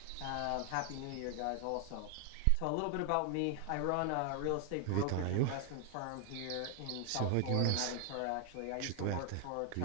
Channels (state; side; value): different; both; correlation 0.00